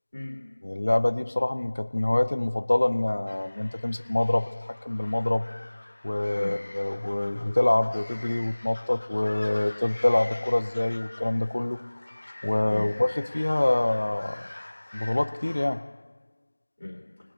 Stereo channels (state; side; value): inverted; both; correlation -1.00